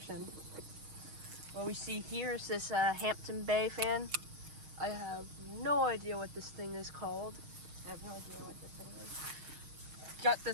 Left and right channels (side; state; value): left; late; 6.4 ms